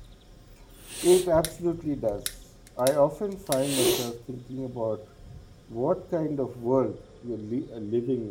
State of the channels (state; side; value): identical; both; correlation 1.00